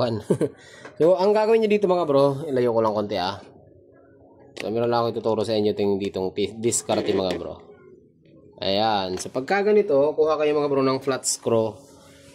So ang gagawin niyo dito mga bro, ilayo ko lang konti So meron lang ako ituturo sa inyo ditong diskarte mga bro. Ayan. So pagka ganito, kuha kayo mga bro ng flat screw.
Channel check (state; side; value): identical; both; correlation 1.00